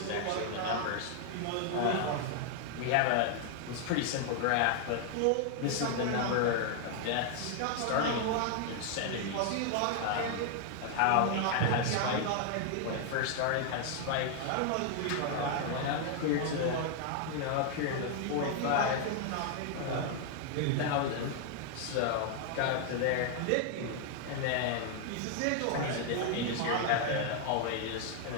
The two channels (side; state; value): both; different; correlation 0.00